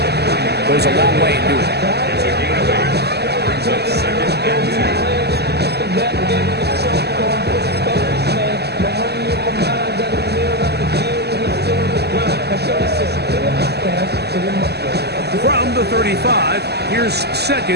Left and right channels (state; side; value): late; left; 0.48 ms